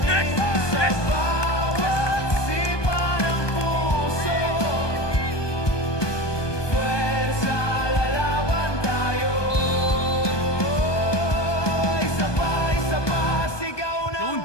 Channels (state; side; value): late; right; 1.2 ms